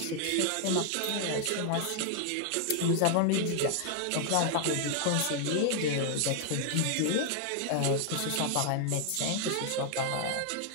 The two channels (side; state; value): both; different; correlation 0.00